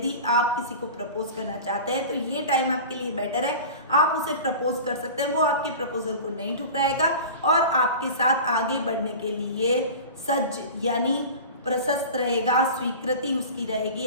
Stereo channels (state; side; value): inverted; both; correlation -0.35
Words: आप किसी को प्रपोज करना चाहते हैं तो ये टाइम आपके लिए बेटर है। आप उसे प्रपोज कर सकते हैं, वो आपके प्रपोजल को नहीं ठुकराएगा और आपके साथ आगे बढ़ने के लिए सज्ज यानी प्रशस्त रहेगा। स्वीकृति उसकी रहेगी